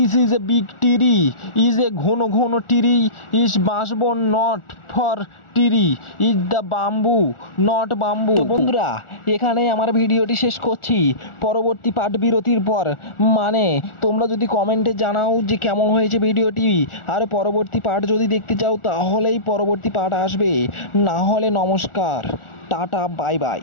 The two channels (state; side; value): late; right; 1.4 ms